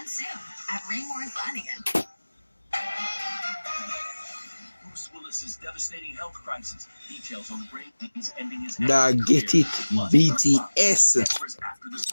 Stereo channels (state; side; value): inverted; both; correlation -1.00